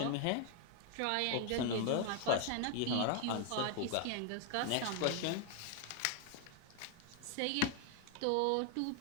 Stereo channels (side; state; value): both; different; correlation 0.00